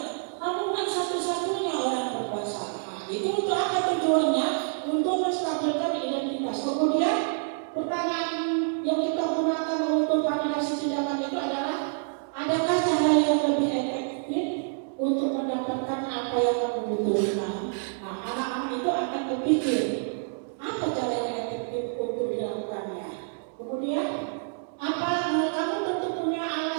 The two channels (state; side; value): silent; left; 60 dB below the other